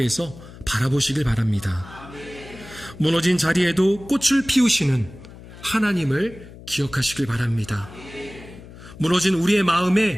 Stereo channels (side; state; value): left; noise; hum, 17 dB below the sound